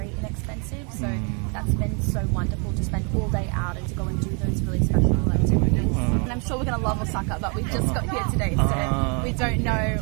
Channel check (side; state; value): left; quieter; 35.4 dB